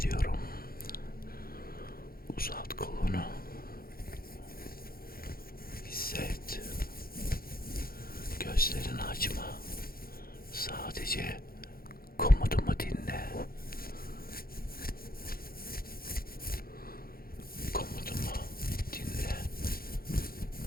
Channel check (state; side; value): late; right; 0.43 ms